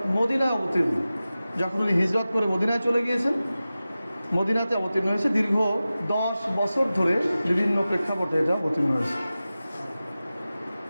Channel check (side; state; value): both; inverted; correlation -0.95